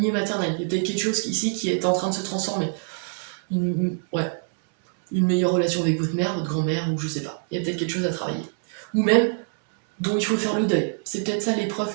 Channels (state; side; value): silent; left; digital silence